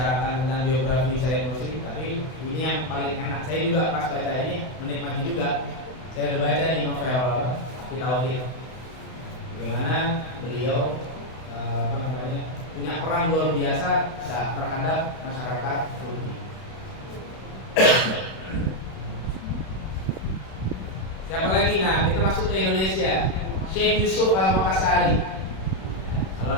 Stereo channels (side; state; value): right; late; 32 ms